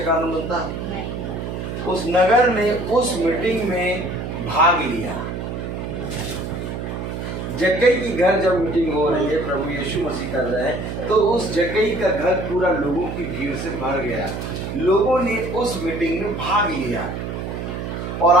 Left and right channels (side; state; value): right; noise; hum, 5 dB below the sound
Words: कारण बनता? उस नगर ने उस मीटिंग में भाग लिया। जक्कई की घर जब मीटिंग हो रही है, प्रभु यीशु मसीह कर रहे हैं, तो उस जक्कई का घर पूरा लोगों की भीड़ से भर गया। लोगों ने उस मीटिंग में भाग लिया। और